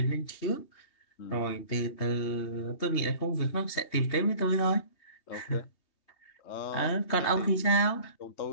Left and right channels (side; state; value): right; late; 3.2 ms